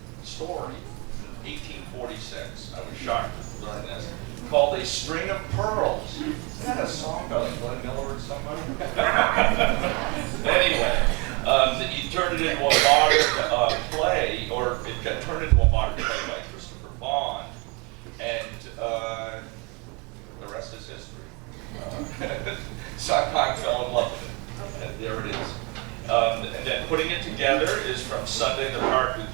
story from 1846. I was shocked to learn this. Called A String of Pearls. Isn't that a song by like Glenn Miller or somebody? Anyway, he turned it into a modern play, or it got turned into a modern play by Christopher Bond, and the rest is history. Sondheim fell in love with it, and there it is. And then putting it together is from Sunday in the Park with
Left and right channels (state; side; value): quieter; left; 29.9 dB